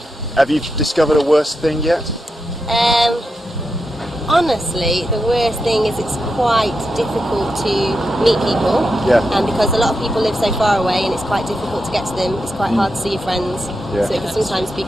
Have you discovered a worse thing yet? Honestly, the worst thing is it's quite difficult to meet people. Yeah. And because a lot of people live so far away and it's quite difficult to get to them, it's quite hard to see your friends. Yeah. So it can sometimes be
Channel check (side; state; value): both; normal; correlation 0.86